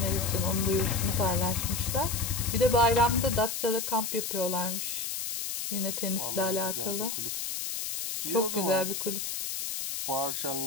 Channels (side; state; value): left; noise; hiss, 4 dB below the sound